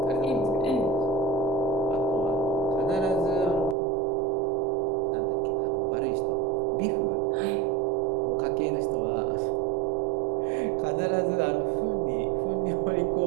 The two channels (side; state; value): left; drops out; at 3.8 s